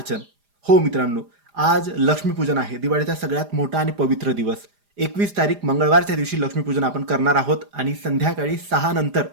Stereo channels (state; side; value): late; left; 4.9 ms